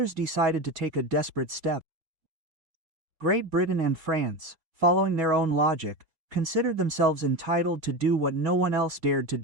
decided to take a desperate step. Great Britain and France, following their own logic, considered themselves entitled to do what no one else dared to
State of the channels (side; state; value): left; late; 4.2 ms